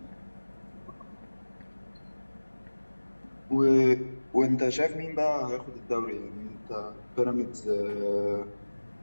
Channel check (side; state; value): both; inverted; correlation -1.00